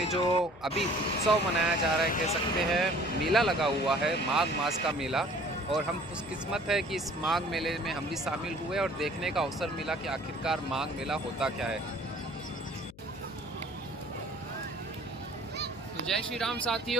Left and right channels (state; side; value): noise; left; hum, 22 dB below the sound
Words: जो अभी उत्सव मनाया जा रहा है, कह सकते हैं मेला लगा हुआ है, माघ मास का मेला। और हम खुशकिस्मत है कि इस माघ मेले में हम भी शामिल हुए और देखने का अवसर मिला कि आखिरकार माघ मेला होता क्या है। तो जय श्री राम